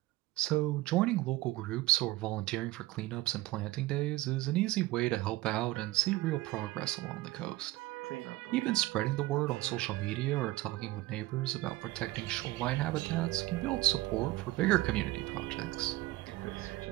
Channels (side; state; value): left; quieter; 18.2 dB